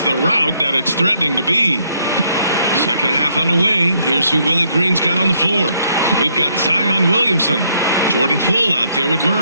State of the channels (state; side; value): inverted; both; correlation -0.71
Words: the rout that it's threatening to be. Second half underway. Here's who Willie Green's got on the floor. We've got Zion Williamson, Jordan Poole out there with